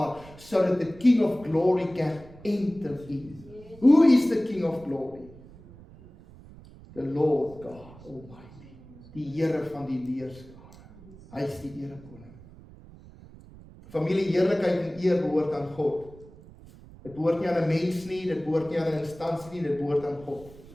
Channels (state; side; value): noise; right; rumble, 20 dB below the sound